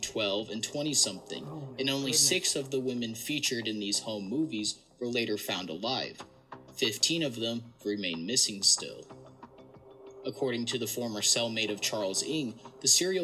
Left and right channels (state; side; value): identical; both; correlation 1.00